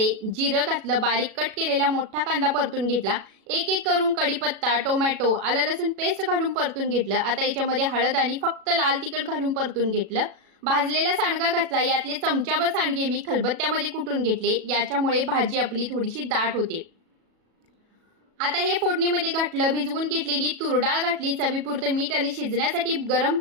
जिरं घातलं, बारीक कट केलेला मोठा कांदा परतून घेतला. एक एक करून कढीपत्ता, टोमॅटो, आलं लसूण पेस्ट घालून परतून घेतलं. आता याच्यामध्ये हळद आणि फक्त लाल तिखट घालून परतून घेतलं. भाजलेला सांडगा घातला. यातले चमचाभर सांडगे मी खलबत्त्यामध्ये कुटून घेतले. याच्यामुळे भाजी आपली थोडीशी दाट होते. आता हे फोडणीमध्ये घातलं. भिजवून घेतलेली तूर डाळ घातली. चवीपुरतं मीठ आणि शिजण्यासाठी गरम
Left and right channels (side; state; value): left; late; 37 ms